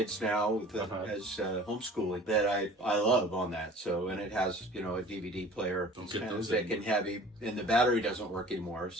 now with as homeschooling that I love on that. So and it has a DVD player. Don't It's get kind of those thick and heavy, and the battery doesn't work anymore.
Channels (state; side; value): normal; both; correlation 0.46